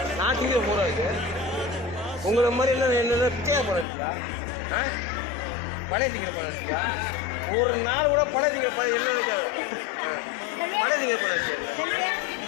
நாட்டுக்கு போரா இருக்கு. உங்களை மாதிரி என்ன பிச்சையா பழகிக்கா? பழைய பழகிக்கா? ஒரு நாள் கூட பழைய பழம் என்ன நினைக்காது. பழைய பழகிச்சு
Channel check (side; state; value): right; drops out; at 3.9 s